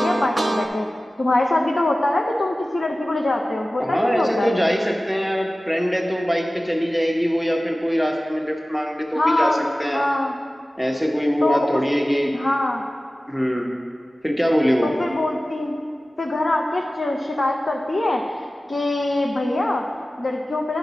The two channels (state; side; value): normal; both; correlation 0.96